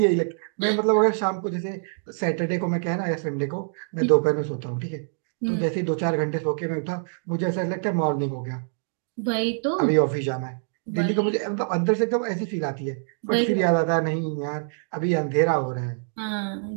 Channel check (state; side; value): silent; left; digital silence